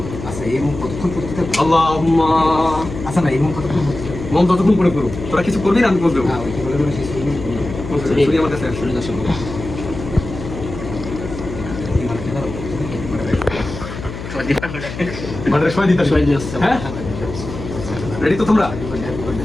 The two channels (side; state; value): left; noise; hum, 9 dB below the sound